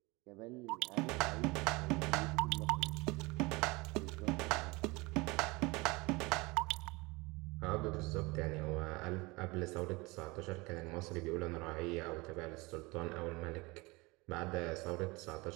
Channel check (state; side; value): quieter; left; 24.4 dB